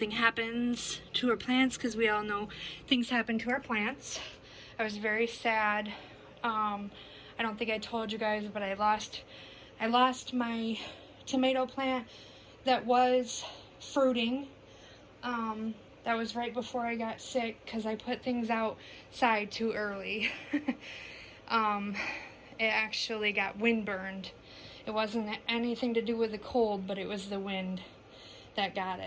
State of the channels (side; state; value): both; identical; correlation 1.00